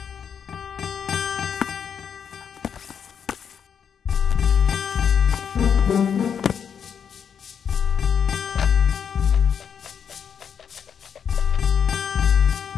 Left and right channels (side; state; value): right; quieter; 7.5 dB